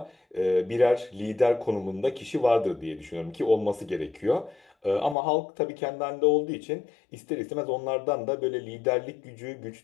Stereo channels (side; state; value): right; drops out; at 5.2 s